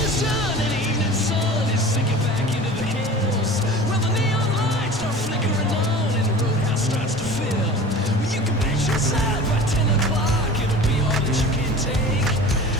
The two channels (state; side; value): normal; both; correlation 0.39